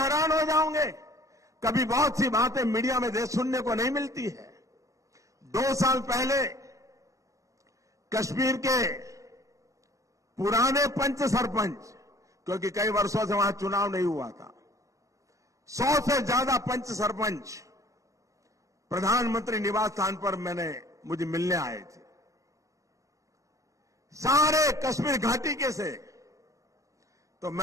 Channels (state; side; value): late; left; 0.16 ms